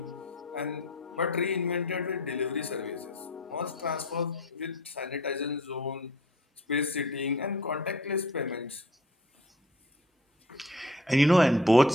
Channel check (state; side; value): normal; both; correlation 0.48